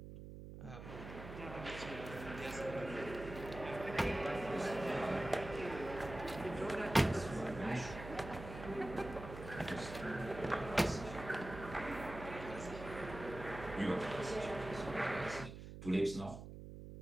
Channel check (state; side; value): noise; right; hum, 11 dB below the sound